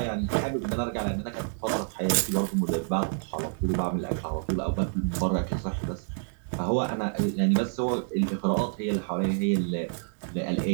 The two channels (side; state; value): left; silent; digital silence